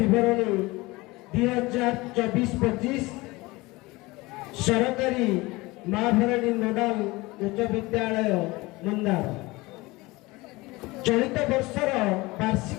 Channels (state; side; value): quieter; right; 21.9 dB